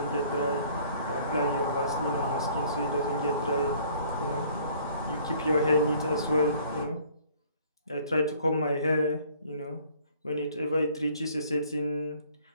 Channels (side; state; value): both; inverted; correlation -0.56